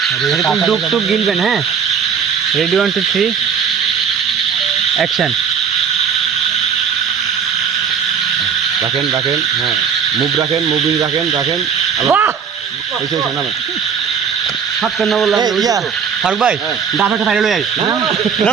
এরকম ডুব টুব গিলবেন হ্যাঁ রেডি 1 2 3 অ্যাকশন রাখেন হ্যাঁ মুভ রাখেন মুভিং রাখেন ওইসব না হাত না বললাম ফারুক ভাই ডাব একটা ফাইনাল আই না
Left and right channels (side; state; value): left; quieter; 6.9 dB